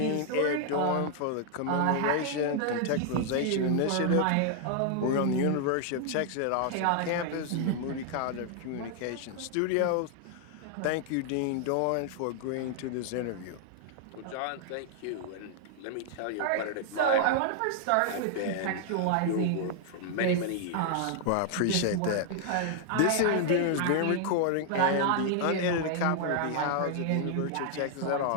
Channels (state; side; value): different; both; correlation 0.00